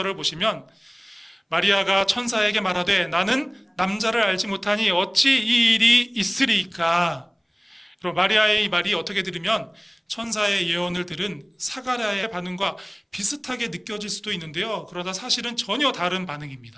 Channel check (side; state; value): both; identical; correlation 1.00